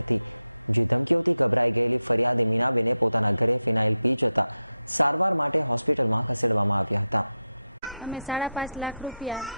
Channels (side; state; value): both; inverted; correlation -0.92